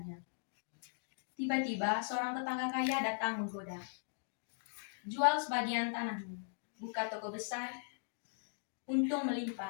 Tiba-tiba seorang tetangga kaya datang menggoda. Jual sebagian tanahmu, buka toko besar, untung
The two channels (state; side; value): silent; right; digital silence